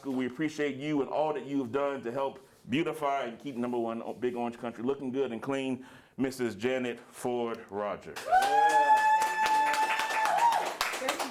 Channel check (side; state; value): both; identical; correlation 1.00